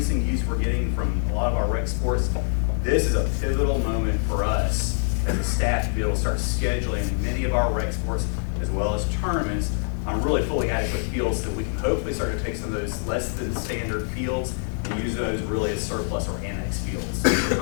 use we're getting from a lot of our rec sports, this is a pivotal moment for us as a staff to be able to start scheduling many of our rec sports, as well as tournaments, on really fully adequate fields, so that we can hopefully start to take some of those less than standard fields and use those really as surplus or annex fields for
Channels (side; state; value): right; silent; 62 dB below the other